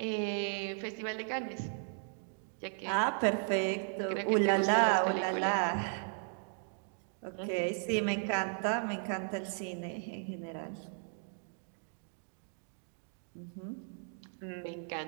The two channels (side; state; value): left; silent; 54 dB below the other